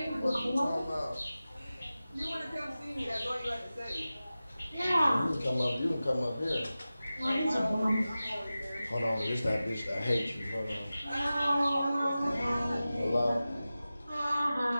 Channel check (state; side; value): inverted; both; correlation -0.95